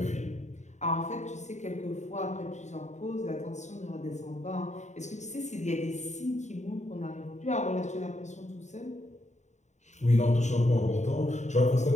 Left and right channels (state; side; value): late; right; 0.34 ms